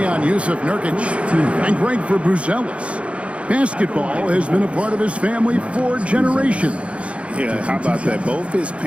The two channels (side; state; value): left; late; 0.061 ms